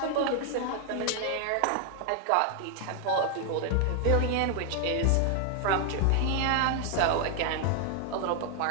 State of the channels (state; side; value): different; both; correlation 0.01